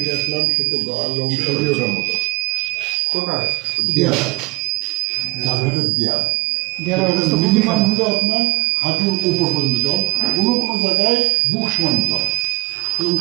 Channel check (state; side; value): quieter; left; 25.2 dB